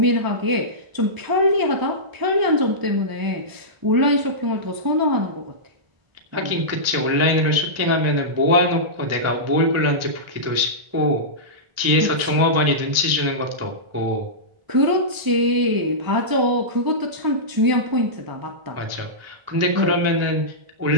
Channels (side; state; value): left; late; 1.4 ms